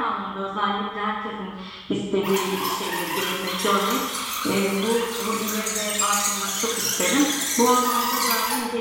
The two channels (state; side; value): identical; both; correlation 1.00